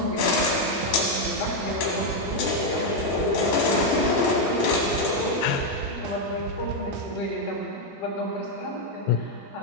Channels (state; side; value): normal; both; correlation 0.02